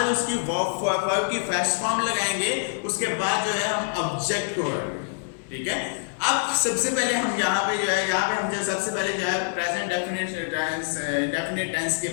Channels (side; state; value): right; silent; digital silence